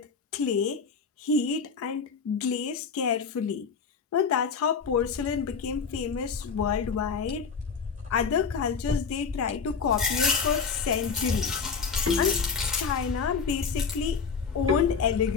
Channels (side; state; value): right; quieter; 5.6 dB